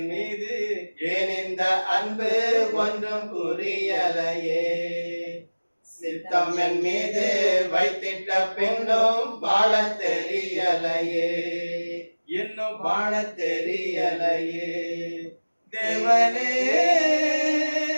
மீது ஏன் இந்த அன்பு ஒன்றும் புரியலையே, சித்தம் என் மீது வைத்திட்ட பின்னும் வாழ தெரியலையே, இன்னும் வாழ தெரியலையே, தேவனே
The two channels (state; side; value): inverted; both; correlation -1.00